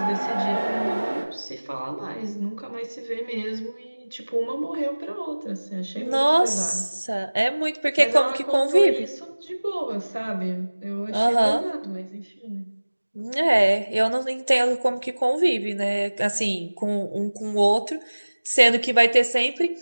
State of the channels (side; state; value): both; inverted; correlation -1.00